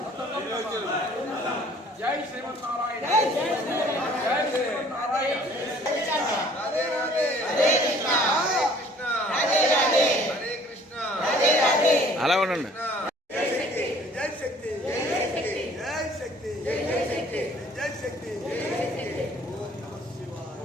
జై శ్రీమన్నారాయణ జై శ్రీమన్నారాయణ అలా ఉండండి.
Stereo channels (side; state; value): both; normal; correlation 0.55